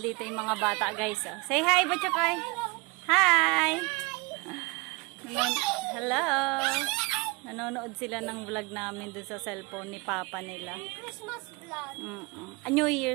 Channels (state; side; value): quieter; left; 27.7 dB